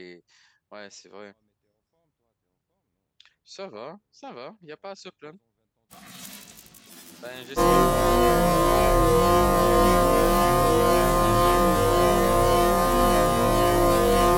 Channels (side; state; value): both; identical; correlation 1.00